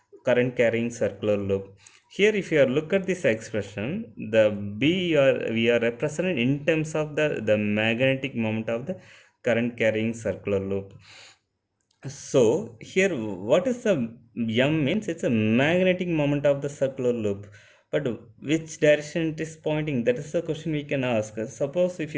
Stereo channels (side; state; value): both; identical; correlation 1.00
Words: current carrying circular loop. Here if you are look at this expression, the b we are represented in terms of the magnetic moment of the current carrying circular loop. So here what is the m means, it's a magnetic moment of the circular loop, but which direction it is pointing, that is the question we can ask. Suppose if